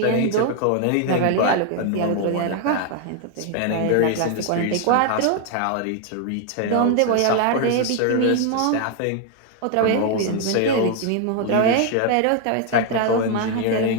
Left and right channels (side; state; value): both; different; correlation 0.00